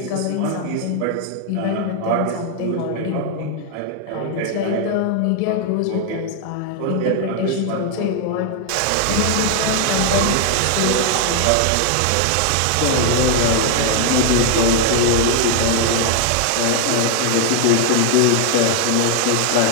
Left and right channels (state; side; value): different; both; correlation 0.00